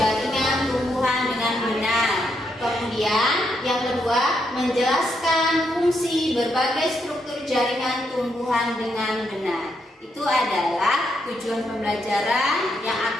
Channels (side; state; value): both; normal; correlation 0.79